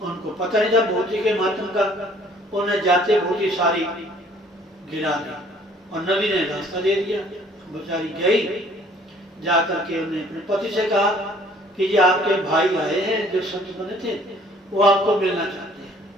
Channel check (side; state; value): both; normal; correlation 0.57